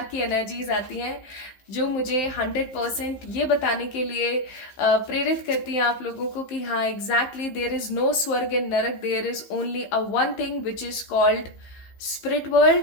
की एनर्जीज आती हैं। जो मुझे 100% ये बताने के लिए प्रेरित करती हैं आप लोगों को कि हाँ एग्जैक्टली देयर इज नो स्वर्ग एंड नरक, there is only a one thing which is called spirit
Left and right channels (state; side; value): late; right; 15 ms